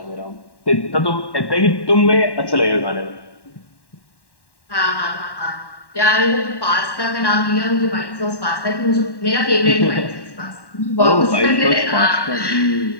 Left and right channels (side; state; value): right; late; 1.1 ms